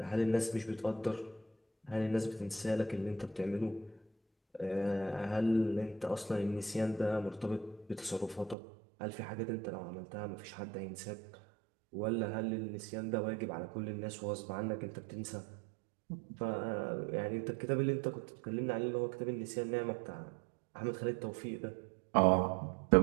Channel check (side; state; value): left; drops out; at 8.6 s